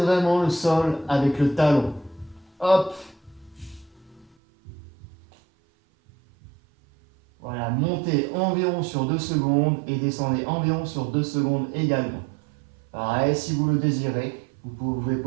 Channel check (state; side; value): drops out; left; at 4.3 s